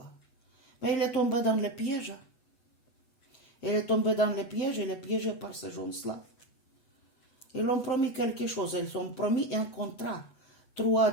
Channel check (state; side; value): late; right; 8.0 ms